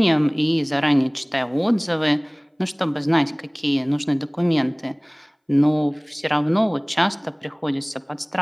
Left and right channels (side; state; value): both; identical; correlation 1.00